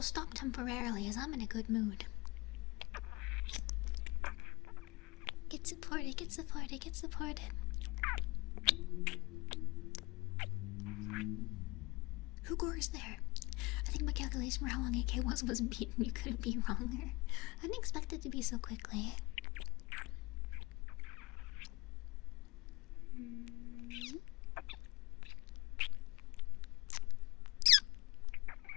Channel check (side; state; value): right; quieter; 23.2 dB